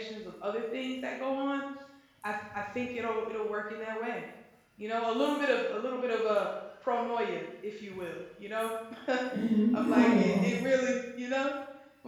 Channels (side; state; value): both; identical; correlation 1.00